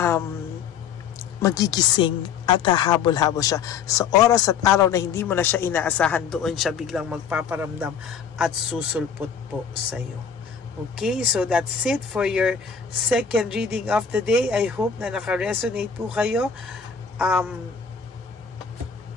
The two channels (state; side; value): quieter; right; 6.8 dB